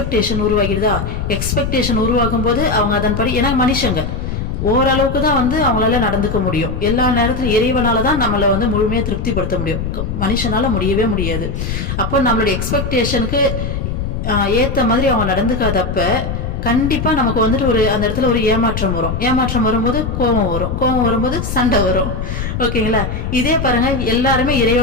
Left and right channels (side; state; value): left; noise; rumble, 4 dB below the sound